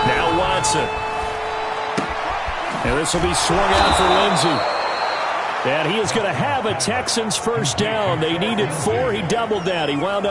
Now Watson. And this will be swung out for Lindsey. And he is going to have a Texans 1st down. They needed 4. He doubled that. He wound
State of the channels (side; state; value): both; identical; correlation 1.00